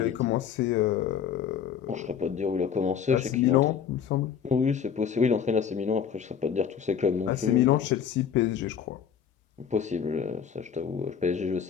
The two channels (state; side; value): quieter; right; 7.9 dB